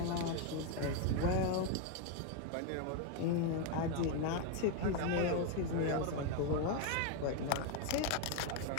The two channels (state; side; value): different; both; correlation 0.01